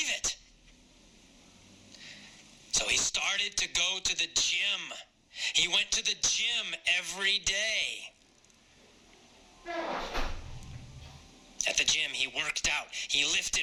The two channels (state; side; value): identical; both; correlation 1.00